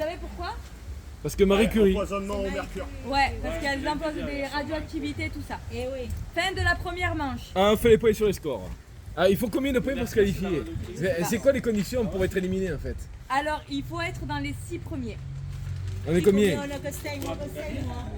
pourquoi? Parce que Marie Curie. Empoisonnement au mercure. Ouais, parce qu'elles imposent des radioactivités, tout ça. Eh oui. Fin de la première manche. Ah, on fait les points sur les scores. Ah, il faut combien de points pour se qualifier? C'est quoi les conditions pour être éliminé en fait? Alors, il faut être dans les 6 premiers. On est combien? On a que 5, moi.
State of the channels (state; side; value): identical; both; correlation 1.00